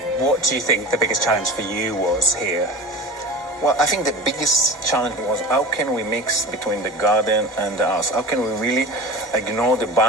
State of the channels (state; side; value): normal; both; correlation 0.33